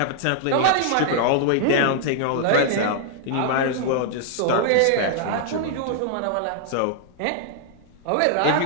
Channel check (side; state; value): both; different; correlation -0.01